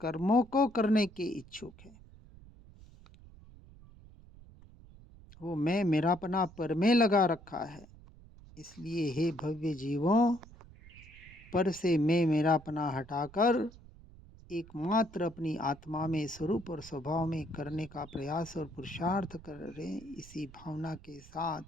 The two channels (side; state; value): right; noise; rumble, 21 dB below the sound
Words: को करने के इच्छुक है। वो मैं मेरापना पर में लगा रखा है। इसलिए हे भव्य जीवों, पर से मैं मेरापना हटाकर एकमात्र अपनी आत्मा में स्वरूप और स्वभाव में करने का प्रयास और पुरुषार्थ करें। इसी भावना के